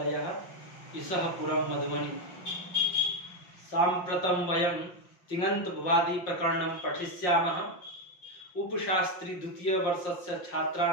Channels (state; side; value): late; right; 5.6 ms